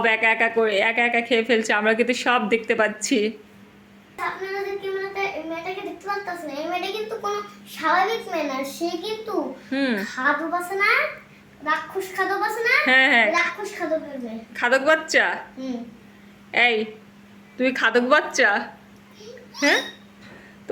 একা একা খেয়ে ফেলছো, আমরা কিন্তু সব দেখতে পাচ্ছি। আপনারা যে মেয়েটাকে দেখতে পাচ্ছেন, এই মেয়েটা কিন্তু কোনো স্বাভাবিক মেয়ে না। সে কিন্তু খাদক আছে না, রাক্ষস খাদক আছে না? হ্যাঁ। রাক্ষস খাদকের মেয়ে। খাদক বাচ্চা? এই, তুমি খাদক বাচ্চা? হ্যাঁ,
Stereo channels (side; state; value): both; identical; correlation 1.00